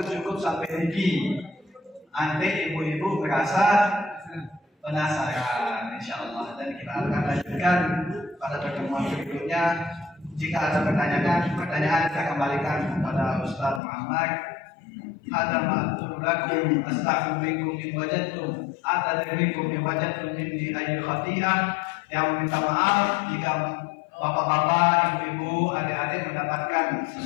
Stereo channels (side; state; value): right; drops out; at 13.8 s